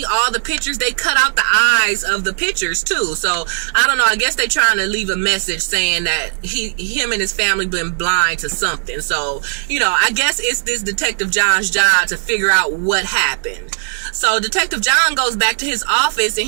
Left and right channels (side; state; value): left; silent; digital silence